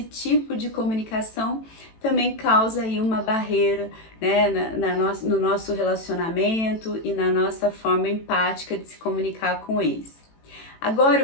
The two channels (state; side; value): late; right; 18 ms